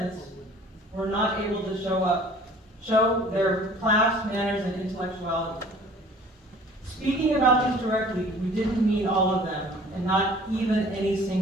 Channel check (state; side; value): normal; both; correlation 0.50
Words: were not able to show their class, manners, and intellectuality. Speaking about these directly, we didn't mean all of them, and not even any